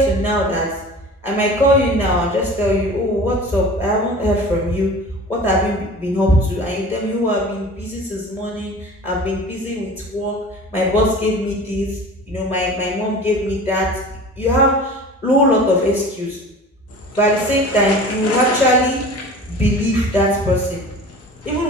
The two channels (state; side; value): normal; both; correlation 0.39